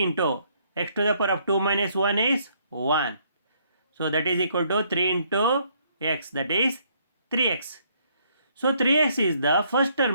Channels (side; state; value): both; inverted; correlation -0.68